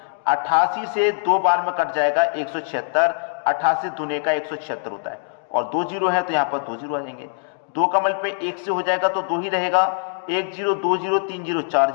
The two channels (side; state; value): right; silent; digital silence